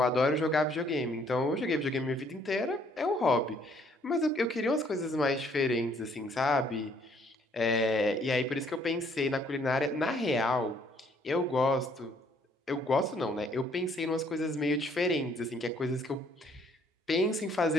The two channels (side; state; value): both; normal; correlation 0.64